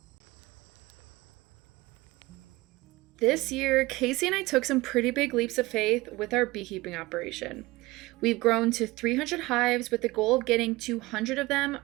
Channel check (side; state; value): left; quieter; 20.7 dB